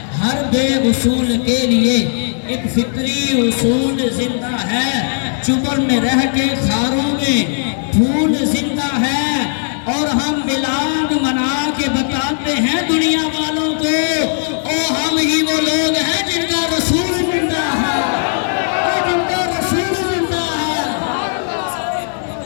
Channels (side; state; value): right; silent; digital silence